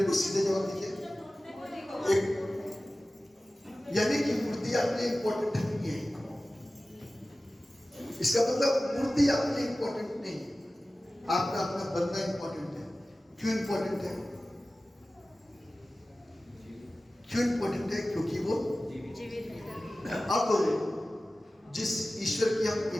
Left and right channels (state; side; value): normal; both; correlation 0.96